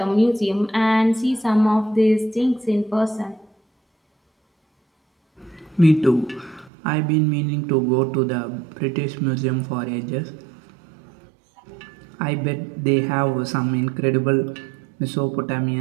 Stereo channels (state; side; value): drops out; left; at 6.7 s